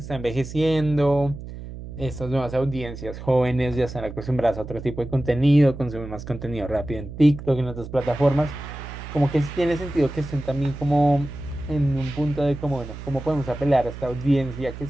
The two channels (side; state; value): right; noise; hum, 11 dB below the sound